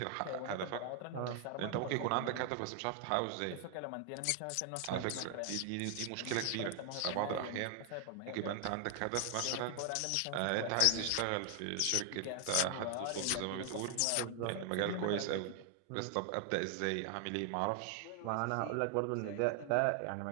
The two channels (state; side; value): different; both; correlation 0.00